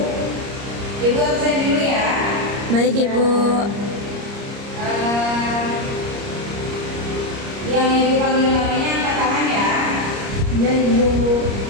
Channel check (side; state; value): left; late; 30 ms